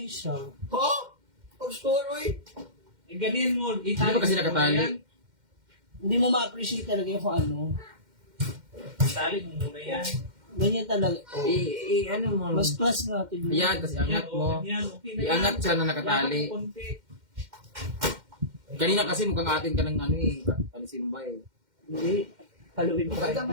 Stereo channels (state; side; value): late; left; 2.1 ms